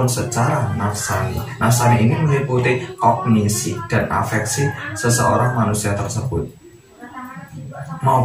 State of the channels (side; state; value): both; identical; correlation 1.00